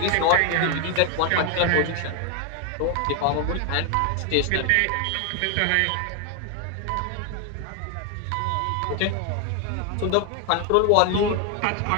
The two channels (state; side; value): different; both; correlation 0.01